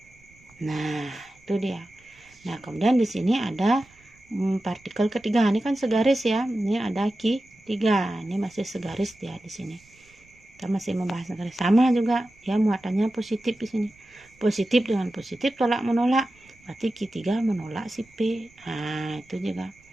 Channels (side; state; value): right; noise; rumble, 29 dB below the sound